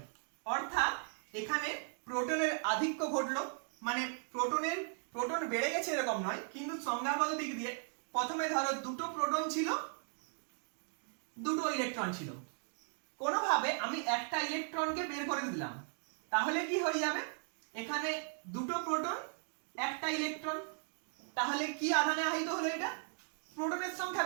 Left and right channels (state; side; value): silent; left; 53 dB below the other